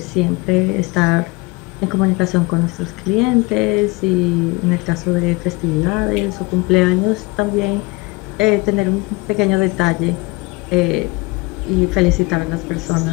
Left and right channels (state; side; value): quieter; right; 24.7 dB